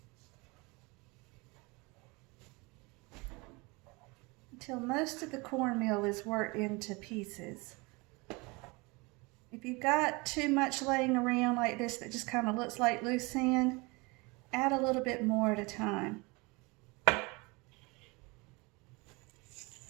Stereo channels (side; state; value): left; quieter; 26.4 dB